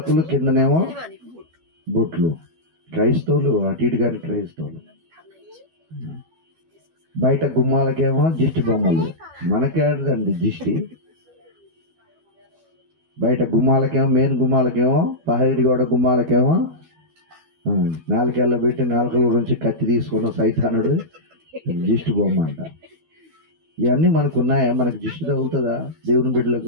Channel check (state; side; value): late; left; 12 ms